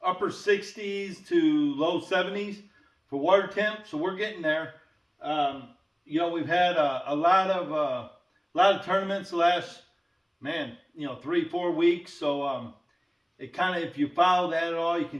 upper 60s to low 70s for water temp, so we're getting there. We've had a lot of tournaments the last 3-4 weeks. So it kind of, if you follow that at all, you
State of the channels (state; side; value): identical; both; correlation 1.00